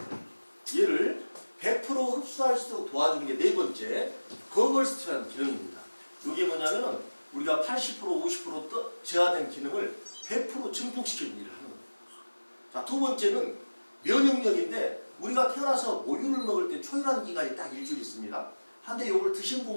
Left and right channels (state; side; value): inverted; both; correlation -1.00